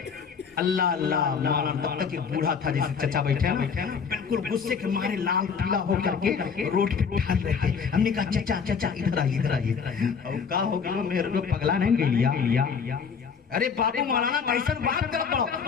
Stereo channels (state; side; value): quieter; right; 6.1 dB